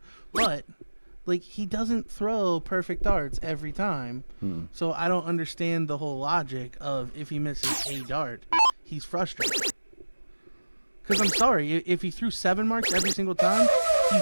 But like, he doesn't throw perfect darts every time. So I don't understand the whole logic of, if he misses a dart, he's frustrated. Because I'm sorry, if he threw 7 marks every single time,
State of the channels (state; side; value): inverted; both; correlation -1.00